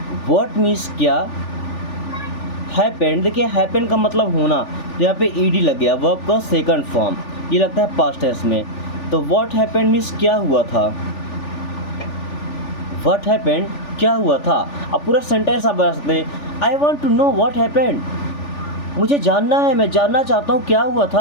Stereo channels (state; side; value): late; right; 3.4 ms